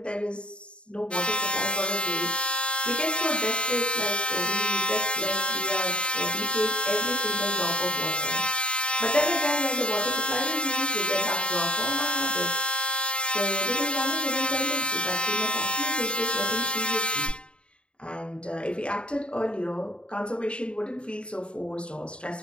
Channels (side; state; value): right; late; 0.055 ms